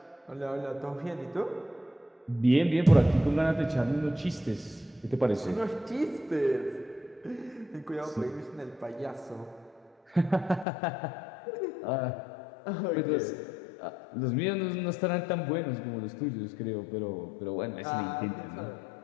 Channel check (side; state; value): right; drops out; at 10.7 s